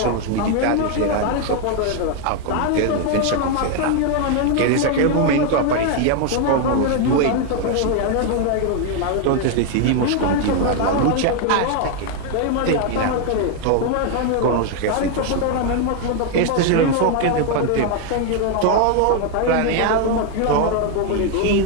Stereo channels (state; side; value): different; both; correlation 0.00